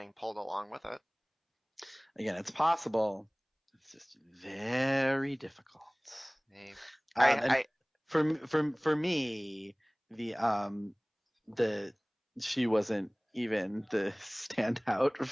pulled along with it. Again, it's possible. It's just very difficult. Hey, And I for me, the the she wasn't even the standout,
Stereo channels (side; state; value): both; identical; correlation 1.00